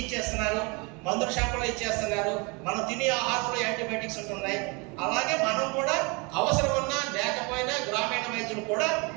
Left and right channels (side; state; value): left; quieter; 29.4 dB